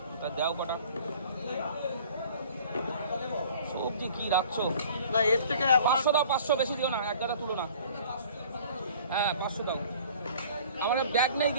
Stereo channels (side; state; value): both; inverted; correlation -0.50